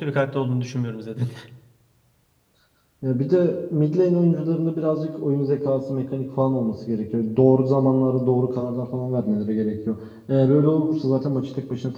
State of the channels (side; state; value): both; identical; correlation 1.00